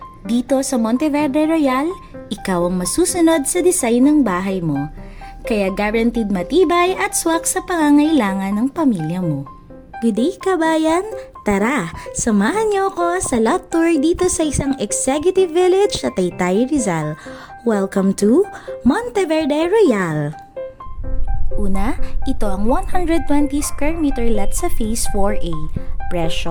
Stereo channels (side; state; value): both; identical; correlation 1.00